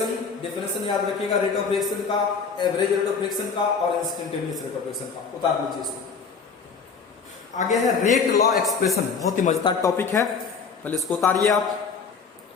डेफिनेशन याद रखिएगा, रेट ऑफ रिएक्शन का, एवरेज रेट ऑफ रिएक्शन का और इंस्टेंटेनियस रेट ऑफ रिएक्शन का। उतार लीजिए इसको। आगे है रेट लॉ एक्सप्रेशन, बहुत ही मजेदार टॉपिक है, पहले इसको उतारिए आप।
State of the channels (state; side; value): quieter; right; 5.4 dB